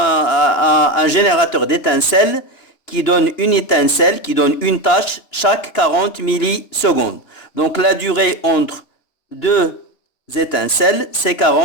générateur d'étincelles qui donne une étincelle, qui donne une tâche chaque 40 millisecondes. Donc la durée entre deux étincelles, c'est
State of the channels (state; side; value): late; right; 2.9 ms